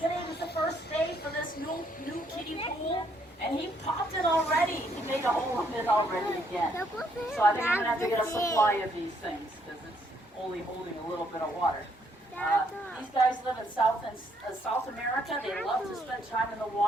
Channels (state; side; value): normal; both; correlation 0.70